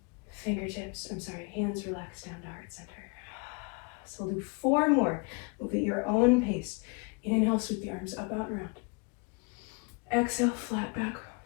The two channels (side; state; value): right; quieter; 31.9 dB